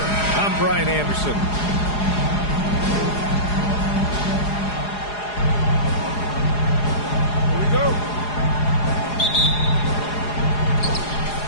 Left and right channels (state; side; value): late; right; 4.8 ms